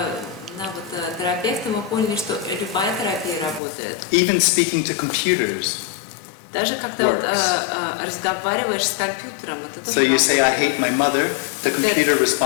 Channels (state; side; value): drops out; right; at 3.6 s